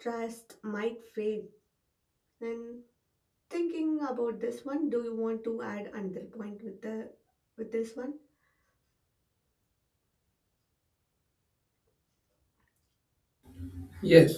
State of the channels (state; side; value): identical; both; correlation 1.00